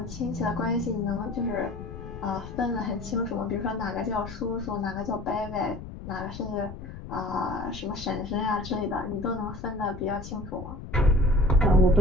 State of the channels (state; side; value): noise; left; rumble, 11 dB below the sound